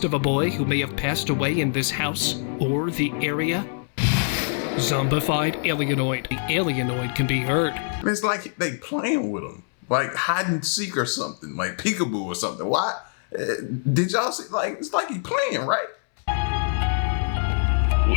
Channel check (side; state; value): right; silent; 61 dB below the other